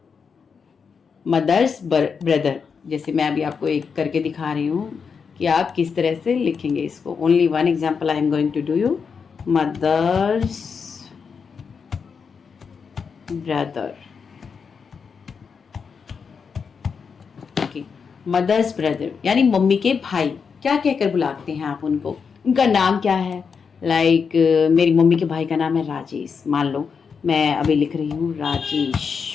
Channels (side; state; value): right; quieter; 5.9 dB